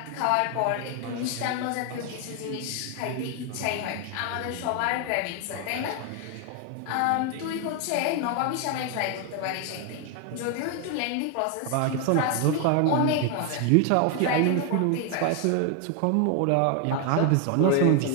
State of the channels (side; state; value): both; different; correlation 0.01